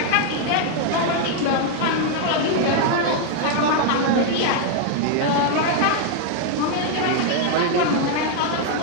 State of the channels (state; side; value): different; both; correlation 0.00